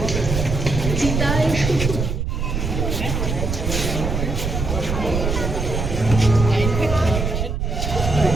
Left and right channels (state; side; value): noise; right; rumble, 2 dB below the sound